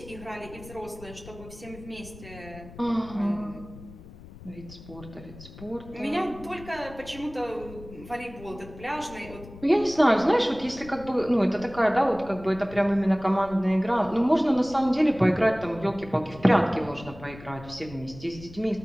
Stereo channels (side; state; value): left; noise; rumble, 17 dB below the sound